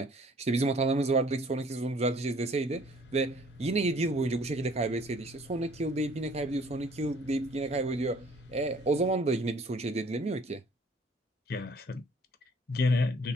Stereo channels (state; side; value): normal; both; correlation 0.56